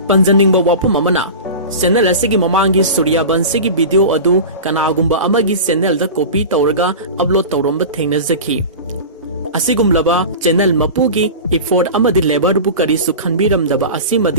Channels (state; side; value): inverted; both; correlation -0.31